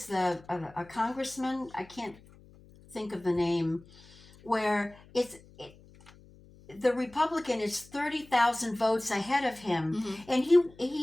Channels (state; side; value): noise; left; hum, 24 dB below the sound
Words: a congressman, I can't think of the name, where the Republican is 30,000 votes ahead of him, and